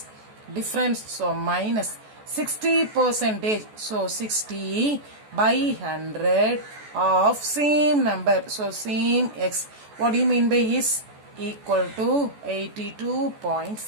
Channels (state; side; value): late; left; 14 ms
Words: Difference, so minus 60%. So 60 by 100 of same number. So same x. What do you mean by is? Equal to